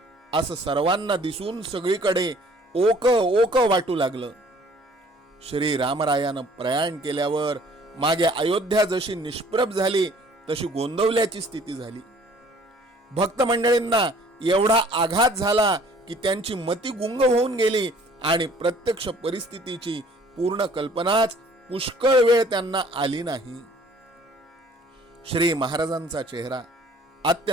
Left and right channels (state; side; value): normal; both; correlation 0.55